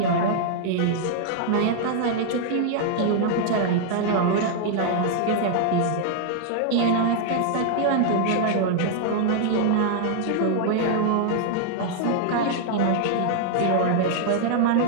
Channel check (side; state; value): both; different; correlation -0.01